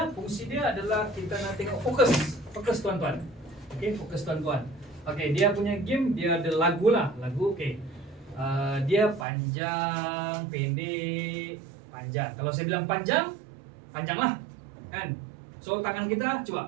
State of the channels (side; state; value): left; drops out; at 9.2 s